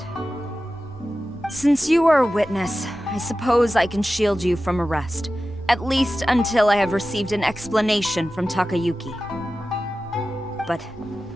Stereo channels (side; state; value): both; normal; correlation 0.94